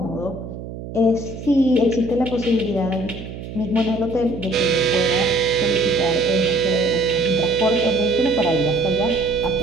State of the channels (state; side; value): noise; right; hum, 11 dB below the sound